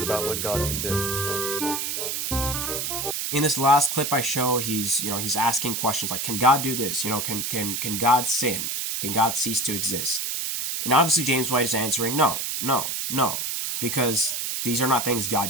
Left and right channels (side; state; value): right; noise; hiss, 2 dB below the sound